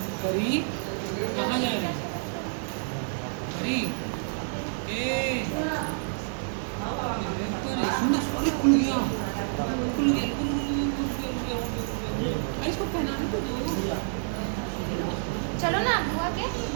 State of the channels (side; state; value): left; silent; 59 dB below the other